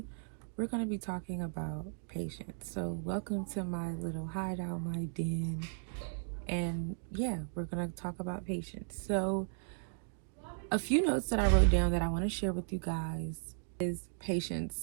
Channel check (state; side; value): silent; left; digital silence